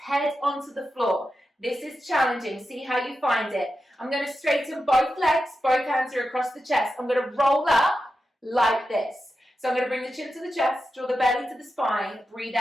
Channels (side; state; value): both; normal; correlation 0.90